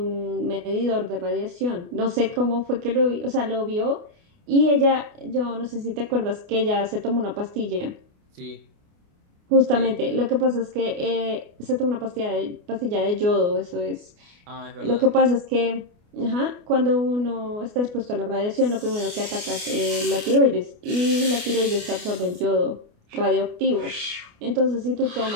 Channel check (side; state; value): left; late; 29 ms